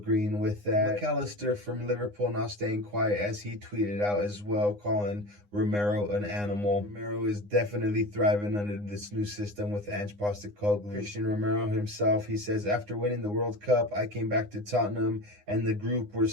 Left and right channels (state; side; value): late; left; 9.8 ms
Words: with that. McAllister from Liverpool not staying quiet as he tweeted out as well, calling Romero an animal. Romero is definitely thriving under this new system with Ange Postecoglou. Christian Romero himself, he says, after winning the World Cup, I came back to Tottenham and the group were